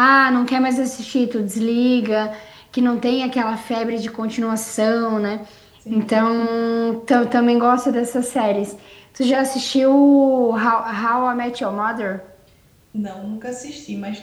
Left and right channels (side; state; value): both; identical; correlation 1.00